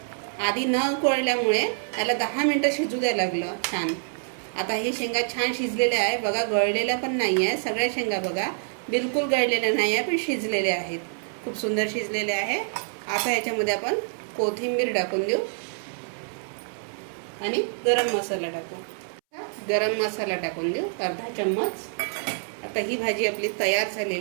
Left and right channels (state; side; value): silent; left; 61 dB below the other